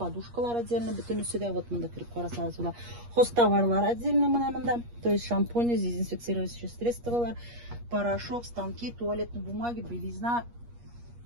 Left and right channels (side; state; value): left; late; 8.4 ms